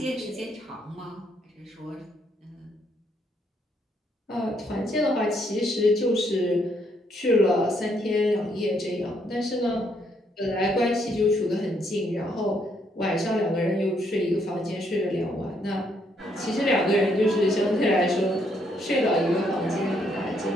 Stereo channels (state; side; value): normal; both; correlation 0.72